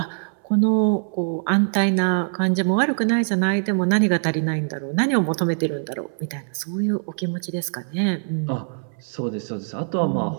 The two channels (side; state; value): left; silent; 63 dB below the other